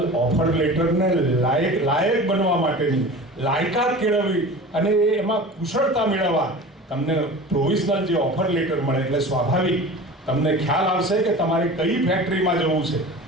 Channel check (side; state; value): both; normal; correlation 0.36